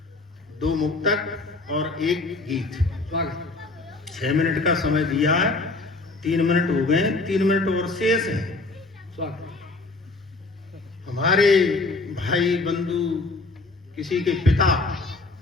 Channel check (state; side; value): quieter; right; 3.4 dB